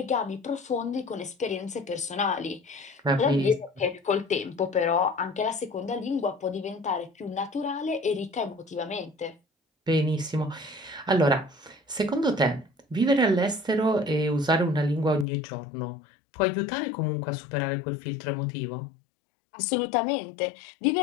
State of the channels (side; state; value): right; drops out; at 15.2 s